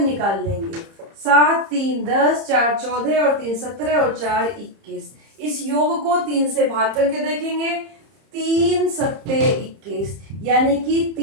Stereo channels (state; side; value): late; left; 30 ms